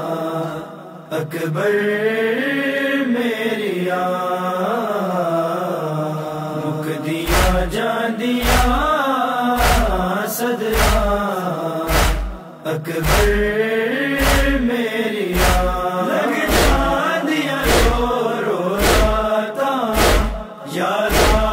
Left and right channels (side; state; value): both; identical; correlation 1.00